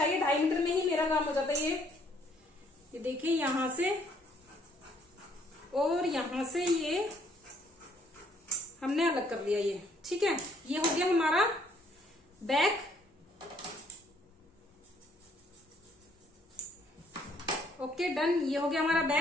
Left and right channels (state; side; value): normal; both; correlation 0.66